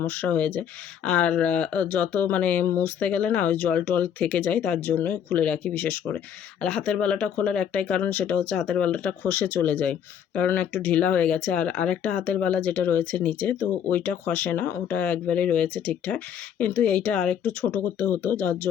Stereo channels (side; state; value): right; quieter; 8.8 dB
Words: হয়ে যায়। আর যত মানে মুছতে গেলে না ওই জল টল থেকে যায়, তার জন্য খুলে রাখি বিশেষ করে। আর হাতের বালাটা খোলার একটাই কারণ, সেটা হচ্ছে হাতের বালাটা খসে চলে যায়, কারণ একটু ঢিলা হয়ে গেছে। আর আরেকটা হাতের বালা যেটা রয়েছে নিচে, তো ওইটা খসে না, ওটা একবারেই রয়েছে ঠিকঠাক, কিন্তু এইটা আরেকটু ছোট করতে হতো, যার